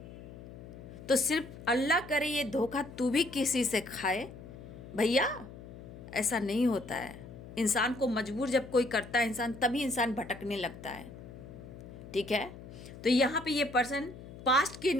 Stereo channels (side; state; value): left; noise; hum, 15 dB below the sound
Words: तो सिर्फ अल्लाह करे ये धोखा तू भी किसी से खाए, भैया ऐसा नहीं होता है। इंसान को मजबूर जब कोई करता है इंसान, तभी इंसान भटकने लगता है। ठीक है, तो यहाँ पे ये पर्सन पास्ट की